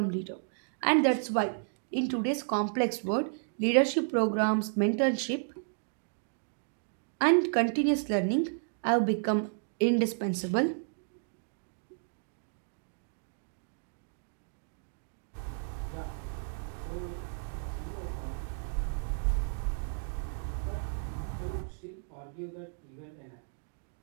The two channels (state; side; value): silent; left; digital silence